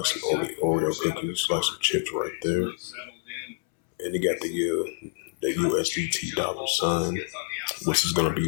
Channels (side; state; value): right; silent; 60 dB below the other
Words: some Oreo cookies, like some chips right there. And they got the USDT dollar sign, which is going to